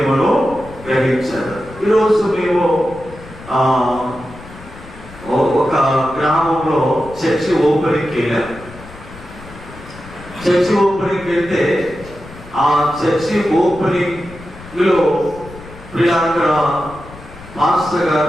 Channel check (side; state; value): left; noise; rumble, 18 dB below the sound